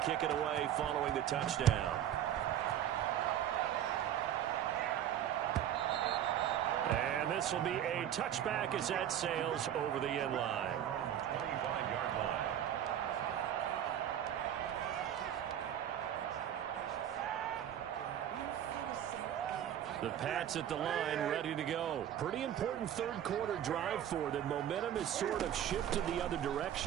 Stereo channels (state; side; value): quieter; left; 10.5 dB